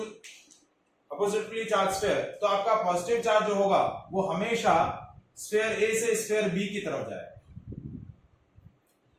oppositely charge sphere, तो आपका पॉजिटिव चार्ज जो होगा वो हमेशा स्फीयर ए से स्फीयर बी की तरफ जाएगा।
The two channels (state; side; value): identical; both; correlation 1.00